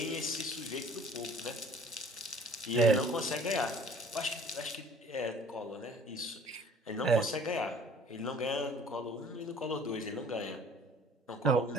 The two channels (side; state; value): both; normal; correlation 0.51